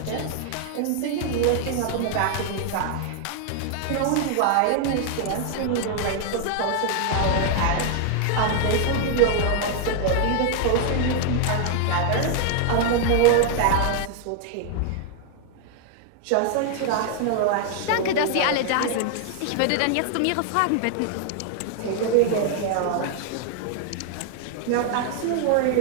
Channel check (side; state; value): both; different; correlation 0.00